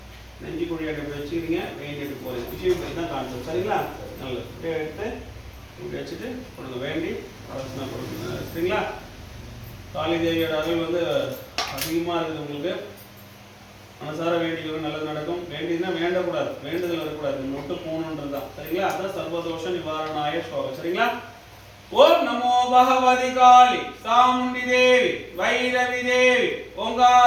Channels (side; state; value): both; identical; correlation 1.00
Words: நெஞ்சு குழி எடுத்து வச்சுக்கிறீங்க. வெயின் எடுத்து போகிறீங்க. விஷயம் தான் கான்செப்ட். சரிங்களா? நல்லது. இப்படியே எடுத்து இப்படி வச்சுட்டு கொடுங்க. வேண்டி அரசனா கொடுங்க. சரிங்களா? காளி தேவியோட அருள் வந்து அதிகமாக இருக்குது உங்களுக்கு. மனசார வேண்டிக்கிறது நல்லது நடக்கும். வேண்டியதுன்னா வேண்டக்கூடாது. வேண்டுதல் வரக்கூடாது. மட்டும் போகணுன்றது தான். சரிங்களா? அதான் சர்வதோஷ நிவாரணாய ஸ்லோகம். சரிங்களா? ஓம் நமோ பகவதி காளி சாமுண்டி தேவி வைரவி தேவி